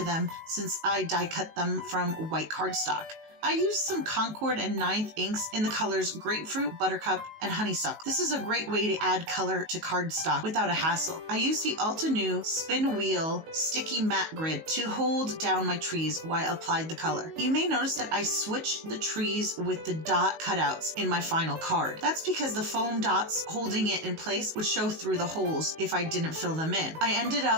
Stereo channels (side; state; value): left; late; 19 ms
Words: them since I die cut them from white cardstock. I used some Concord and 9th inks in the colors Grapefruit, Buttercup, and Honeysuckle. This is a great way to add color to cardstock without a hassle. I used the Ulta New Spin Wheel Sticky Matte Grid to hold down my trees while I applied the color. You may notice that I switched the trees with the dot cutouts in my final card. That's because the foam dots holding it in place would show through the holes if I didn't fill them in. I ended